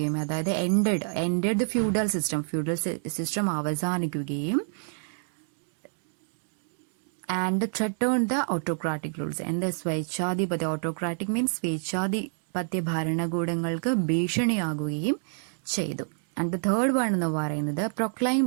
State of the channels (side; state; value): left; silent; digital silence